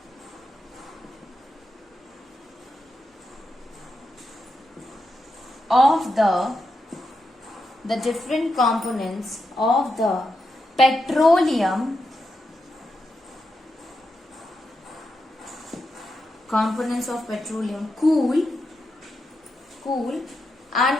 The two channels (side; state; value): both; normal; correlation 0.85